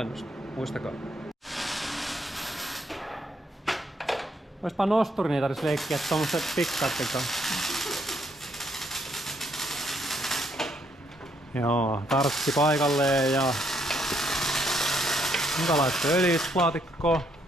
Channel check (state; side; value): normal; both; correlation 0.72